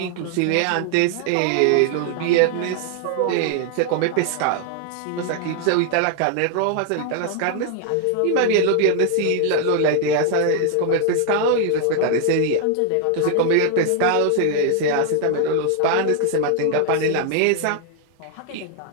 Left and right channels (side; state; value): both; different; correlation 0.00